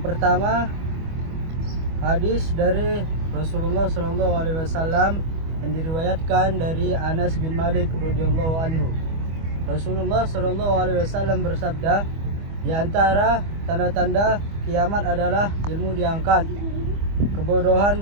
pertama, hadis dari Rasulullah SAW yang diriwayatkan dari Anas bin Malik radhiyallahu anhu. Rasulullah SAW bersabda, di antara tanda-tanda kiamat adalah ilmu diangkat, kebodohan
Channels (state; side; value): late; left; 25 ms